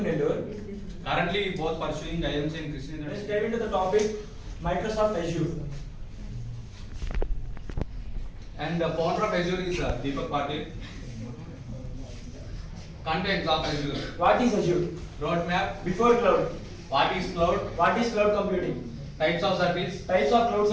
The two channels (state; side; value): identical; both; correlation 1.00